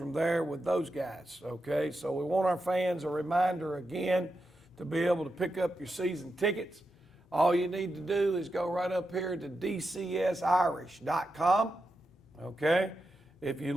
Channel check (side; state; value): both; normal; correlation 0.88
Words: there with those guys, okay? So we want our fans a reminder again to be able to pick up your season tickets. All you need to do is go right up here to dcsirish.com, okay? If you